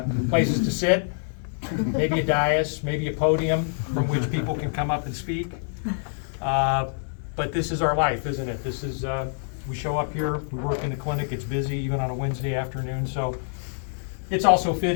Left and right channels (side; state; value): right; silent; 61 dB below the other